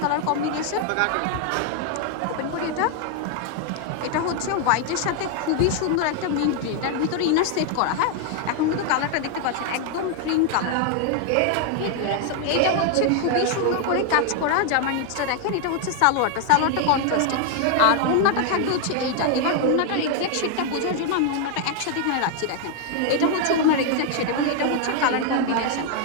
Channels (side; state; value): both; different; correlation 0.00